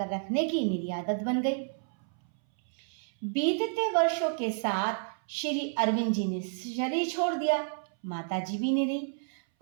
रखने की मेरी आदत बन गई। बीतते वर्षों के साथ श्री अरविंद जी ने शरीर छोड़ दिया, माताजी भी नहीं रही,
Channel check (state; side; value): silent; left; 58 dB below the other